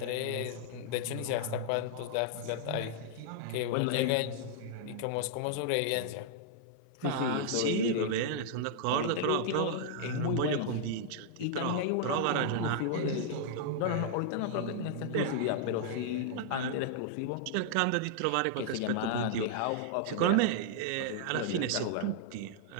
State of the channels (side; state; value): both; different; correlation -0.01